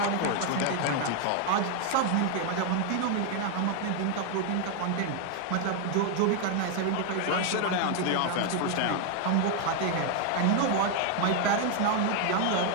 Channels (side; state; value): both; different; correlation 0.00